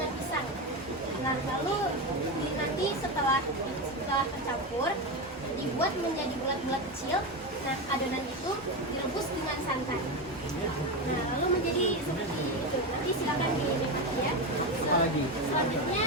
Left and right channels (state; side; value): normal; both; correlation 0.15